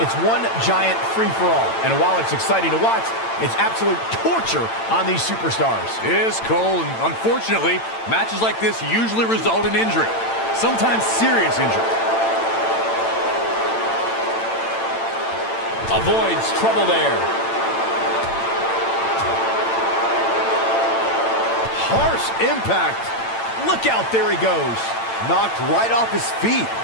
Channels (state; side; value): late; right; 8.9 ms